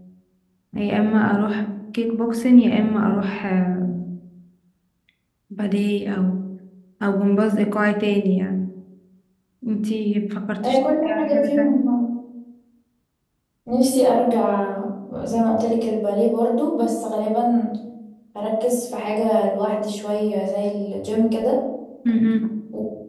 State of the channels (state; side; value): identical; both; correlation 1.00